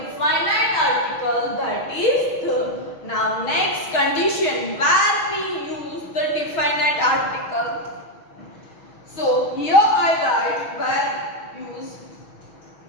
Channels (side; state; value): right; late; 6.3 ms